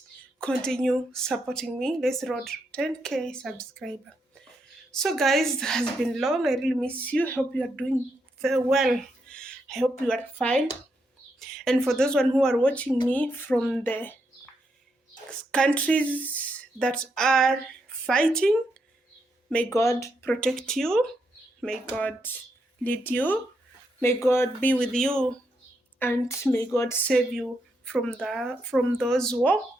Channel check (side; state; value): both; normal; correlation 0.80